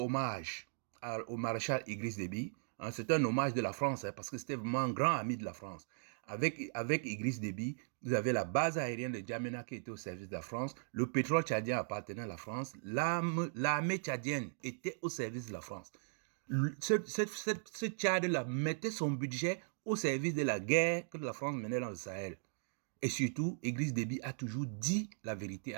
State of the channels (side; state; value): left; silent; digital silence